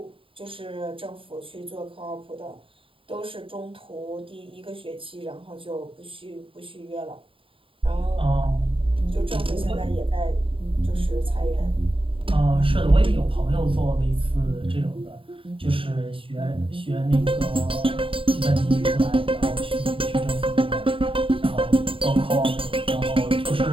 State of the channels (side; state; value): left; late; 0.26 ms